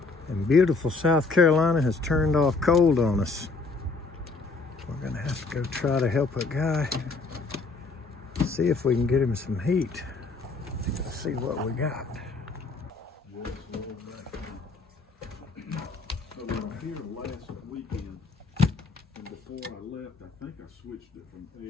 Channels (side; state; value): right; quieter; 4.0 dB